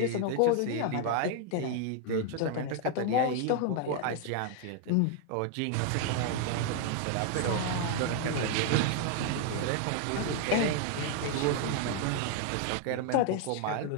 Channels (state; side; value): different; both; correlation 0.00